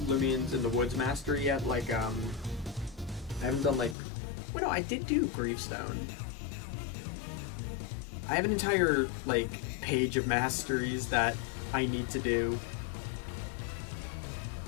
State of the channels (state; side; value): drops out; right; at 4.0 s